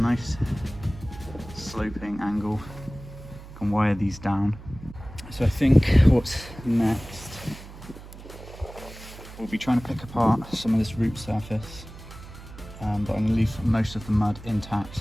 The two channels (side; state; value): right; noise; hum, 16 dB below the sound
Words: sloping angle. Can wire these down. So I think what's next, we'll be trying to pick apart some of this root surface, but I'm going to leave most of the mud